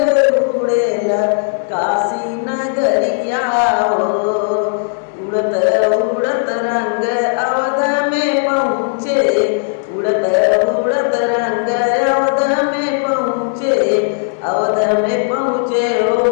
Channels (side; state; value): right; silent; digital silence